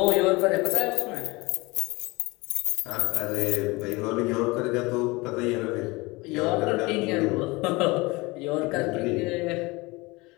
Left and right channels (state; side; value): quieter; right; 23.6 dB